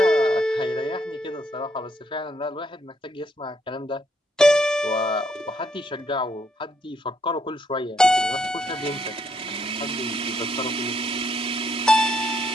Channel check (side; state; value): both; normal; correlation 0.74